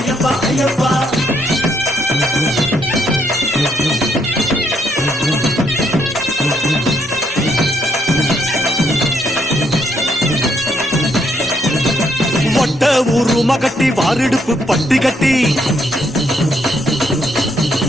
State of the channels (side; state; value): both; normal; correlation 0.73